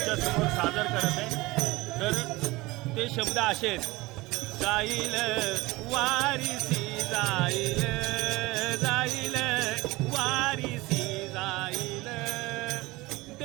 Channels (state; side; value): quieter; left; 21.1 dB